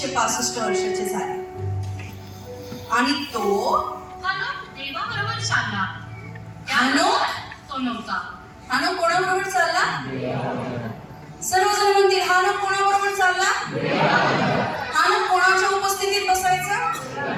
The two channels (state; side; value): identical; both; correlation 1.00